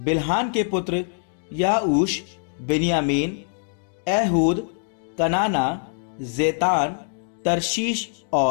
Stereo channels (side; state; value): right; silent; 63 dB below the other